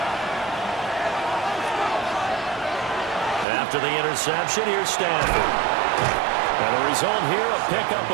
After the interception, here's Stafford. And the result here, a pickup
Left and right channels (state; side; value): drops out; left; at 3.5 s